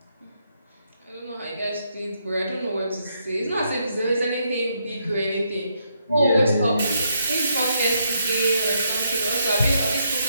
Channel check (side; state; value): both; inverted; correlation -0.77